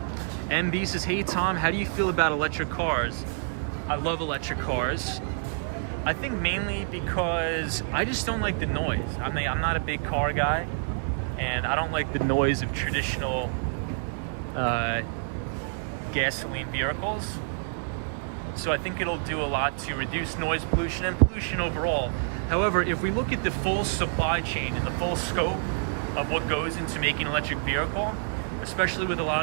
MB says, hey Tom, how do you feel about electric cars? I love electric cars. I think mainly because I just don't like the noise. I'm not a big car guy, and I don't like the noise of traditional gasoline vehicles. So I think it'll do a lot to reduce noise pollution and pollution overall. However, if we look at the full supply chain and the full scope of what goes into making an electric vehicle, especially with a lot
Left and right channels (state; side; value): silent; left; digital silence